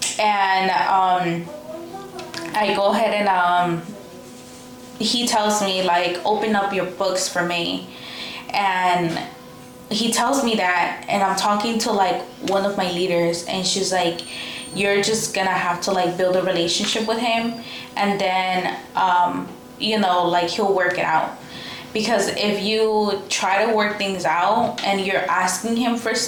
And I go ahead and he tells me like, open up your books for me. And he tells me that, and I'm talking to like one of my leaders, and she's like, you're just gonna have to like build a relationship with him, and then you know, like he'll work it out. Because if you try to work things out and you're asking him for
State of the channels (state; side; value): identical; both; correlation 1.00